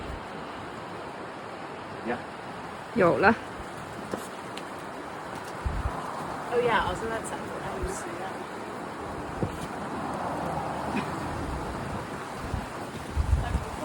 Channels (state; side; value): identical; both; correlation 1.00